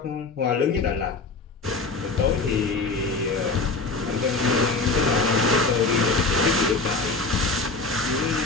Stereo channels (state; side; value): quieter; right; 3.8 dB